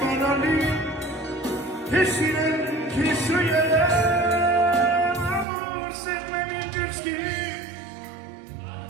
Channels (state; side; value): drops out; left; at 5.5 s